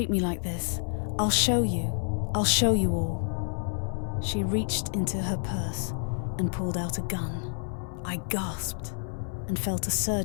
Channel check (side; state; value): right; silent; 59 dB below the other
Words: me like this. I'll show you. I'll show you all." She reached into her purse and pulled out a gun. I gasped and felt a